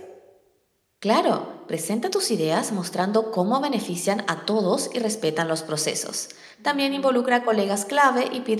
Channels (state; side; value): identical; both; correlation 1.00